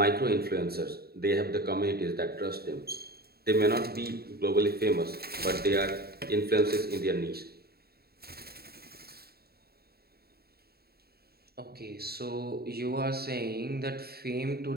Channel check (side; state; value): left; late; 0.45 ms